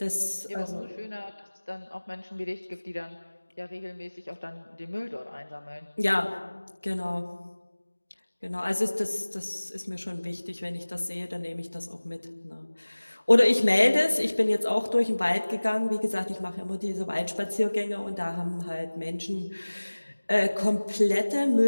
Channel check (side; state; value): both; inverted; correlation -1.00